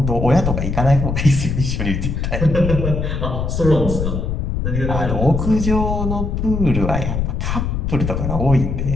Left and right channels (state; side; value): noise; left; rumble, 1 dB below the sound